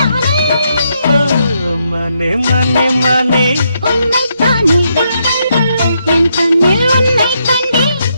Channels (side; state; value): both; inverted; correlation -0.78